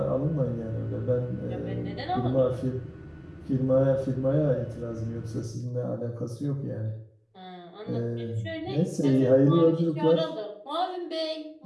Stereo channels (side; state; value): both; identical; correlation 1.00